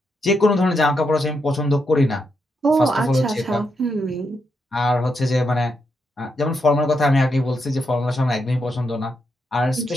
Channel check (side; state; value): both; normal; correlation 0.82